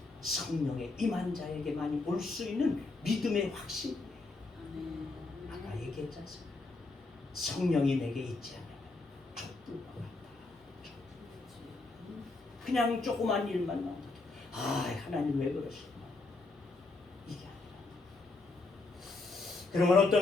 성령의 임한 자에게만이 올 수 있는 믿음의 확신이에요. 아까 얘기했지 않습니까? 성령이 내게 있지 않으면 촛불과 같다. 그냥 조그만 일만 나오도 하나님 왜 그러시구나 이게 아니라 그러면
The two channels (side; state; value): right; quieter; 3.5 dB